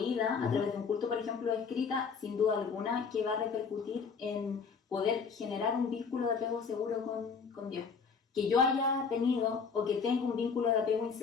a través de un culto, por ejemplo, escrita, sin duda alguna, que va a repercutir en poder generar un vínculo de apego seguro con Dios. Que yo haya tenido o que tenga un vínculo de apego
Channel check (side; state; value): right; quieter; 5.5 dB